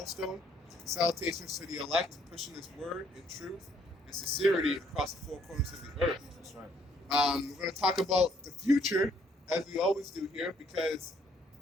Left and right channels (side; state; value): both; normal; correlation 0.67